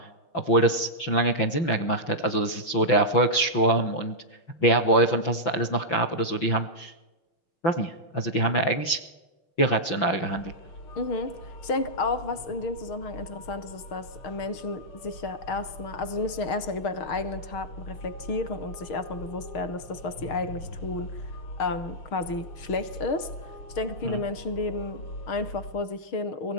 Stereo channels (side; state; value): right; late; 6.0 ms